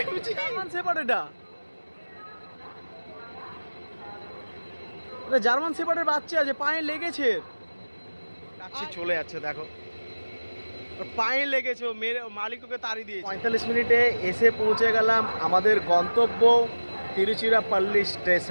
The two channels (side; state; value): both; inverted; correlation -1.00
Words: জার্মান শেপার্ড, এটা জার্মান শেপার্ডের বাচ্চা যে পায়ে লেগেছে, চলে যাচ্ছে দেখো পায়ে লেগেছে, মেরে মালিক ওকে তাড়িয়ে দিয়েছে। 45 মিনিটে এসে পৌঁছে গেলাম আমাদের গন্তব্য তিরুচিরাপল্লী